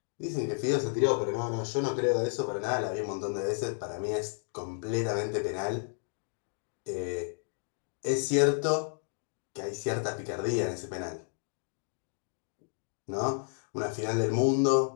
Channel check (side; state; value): right; silent; digital silence